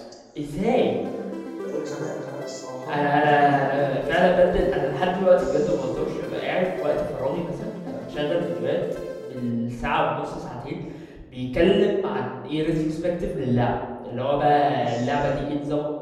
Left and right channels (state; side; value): identical; both; correlation 1.00